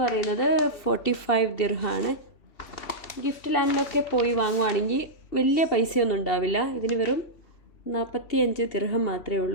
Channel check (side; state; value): right; late; 2.7 ms